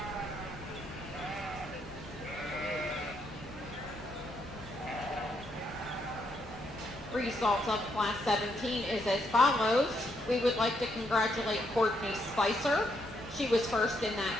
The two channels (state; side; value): normal; both; correlation 0.76